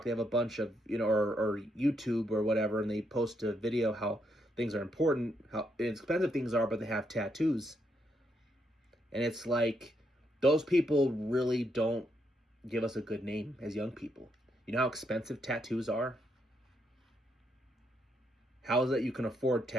They have a bunch of or YouTube or whatever, and they post a video how things are important, how expensive things are, but they have tattoos. And it's like, those people really don't give us a good name as young people. You know how expensive tattoos are? How is it you can afford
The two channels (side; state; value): both; normal; correlation 0.77